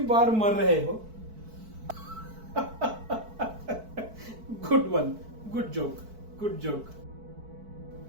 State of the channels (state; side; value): late; left; 4.6 ms